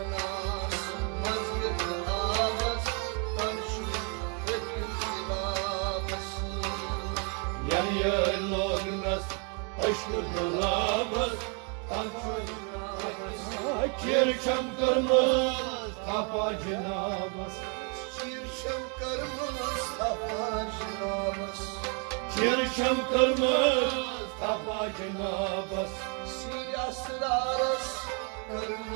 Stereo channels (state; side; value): quieter; left; 37.2 dB